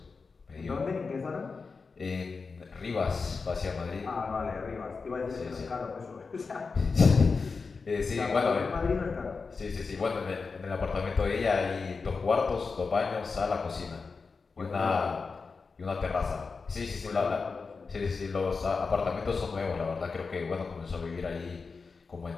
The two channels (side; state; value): right; quieter; 4.7 dB